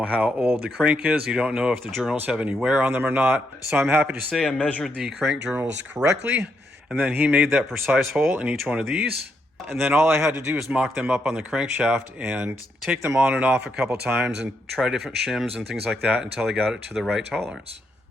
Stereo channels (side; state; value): both; normal; correlation 0.79